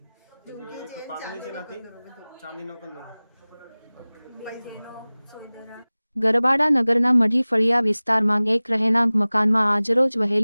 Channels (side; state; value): both; inverted; correlation -0.99